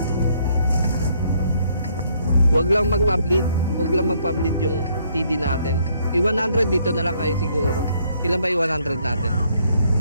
Wag lang magpa-bleed yung TD natin. I-100 dito na lang kayo siguro. Ilan ba i-100 natin?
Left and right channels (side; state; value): both; inverted; correlation -0.68